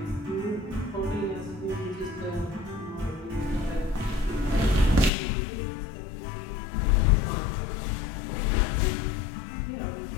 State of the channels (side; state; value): right; drops out; at 5.1 s